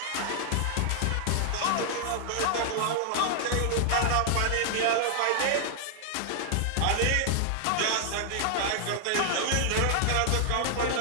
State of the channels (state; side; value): different; both; correlation 0.00